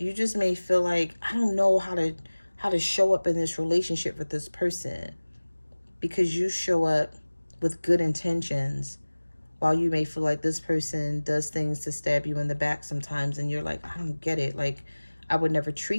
just may feel like, I don't know how to show up in this relationship with this person. Because you show up with good intentions, while you may feel like this person does things to stab you in the back sometimes, and you're like, I don't get it. Like, I would never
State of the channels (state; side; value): inverted; both; correlation -1.00